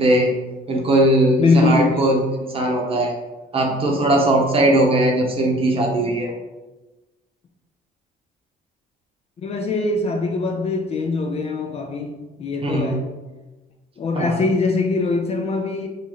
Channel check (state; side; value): normal; both; correlation 0.53